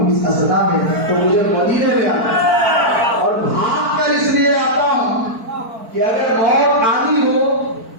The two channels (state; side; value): late; left; 4.5 ms